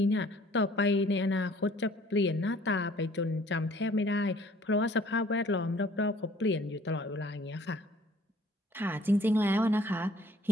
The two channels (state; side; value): normal; both; correlation 0.56